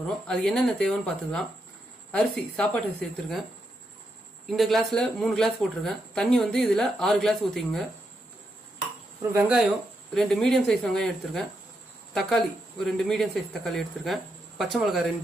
அது என்னென்ன தேவைன்னு பார்த்துக்கலாம். அரிசி, சாப்பாட்டு அரிசி எடுத்துருக்கேன். இந்த கிளாஸ்ல 3 கிளாஸ் போட்டிருக்கேன். தண்ணி வந்து இதுல 6 கிளாஸ் ஊற்றிங்க. அப்புறம் வெங்காயம் 2 மீடியம் சைஸ் வெங்காயம் எடுத்திருக்கேன். தக்காளி ஒரு 2 மீடியம் சைஸ் தக்காளி எடுத்திருக்கேன். பச்சை மிளகாய்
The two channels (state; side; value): normal; both; correlation 0.82